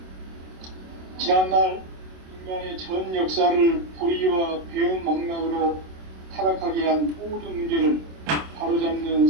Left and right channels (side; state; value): left; late; 27 ms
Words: 지난날 인간의 전 역사를 불의와 배움 망락으로 타락하게 한 모든 문제를 바로잡는